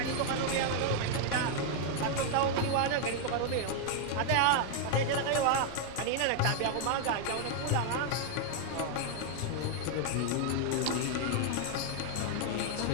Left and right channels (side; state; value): both; different; correlation 0.00